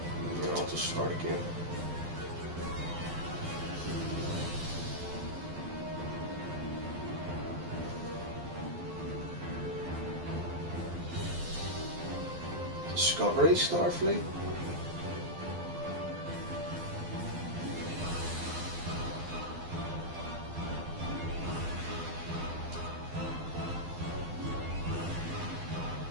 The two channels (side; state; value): left; late; 12 ms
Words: Yeah, I'll just start again. Discovery Starfleet?